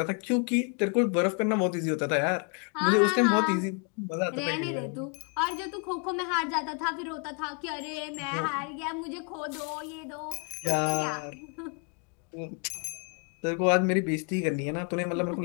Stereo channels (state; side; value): quieter; right; 37.6 dB